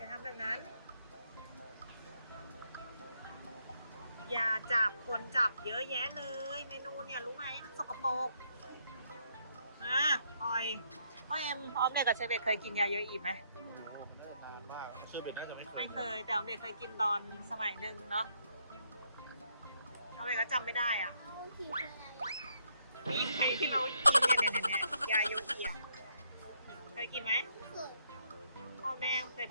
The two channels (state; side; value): inverted; both; correlation -0.73